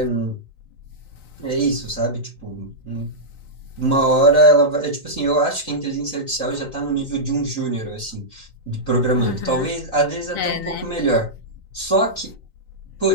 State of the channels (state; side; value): late; right; 3.9 ms